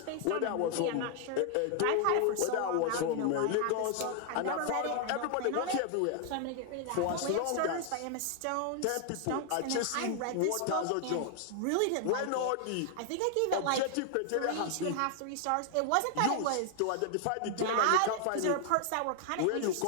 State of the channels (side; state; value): both; different; correlation 0.00